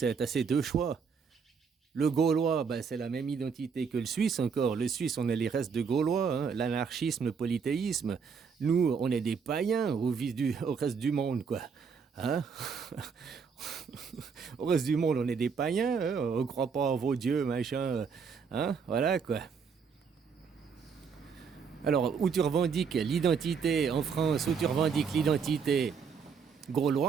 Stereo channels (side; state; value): left; quieter; 6.0 dB